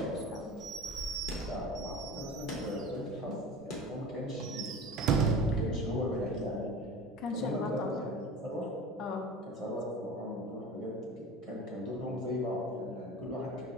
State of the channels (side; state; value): both; normal; correlation 0.36